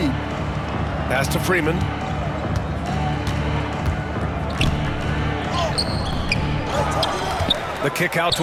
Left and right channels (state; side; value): identical; both; correlation 1.00